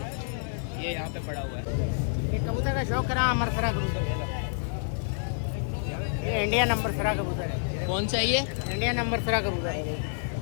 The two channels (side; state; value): right; silent; digital silence